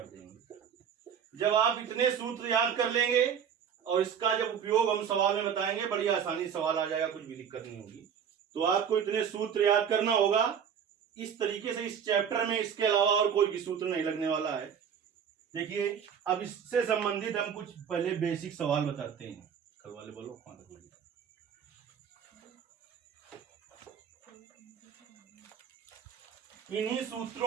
देंगे। जब आप इतने सूत्र याद कर लेंगे और इसका जब उपयोग हम सवाल में बताएंगे, बड़ी आसानी सवाल आ जाएगा, कुछ भी दिक्कत नहीं होगी। तो आपको इतने सूत्र याद करना होगा इस तरीके से। इस चैप्टर में इसके अलावा और कोई भी सूत्र नहीं लगने वाला है। देखिए, अब इससे संबंधित हम कुछ पहले बेसिक सवाल बताते हैं। कल वाले बोलो कौन तक बोलिए। इन्हीं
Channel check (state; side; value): quieter; left; 7.9 dB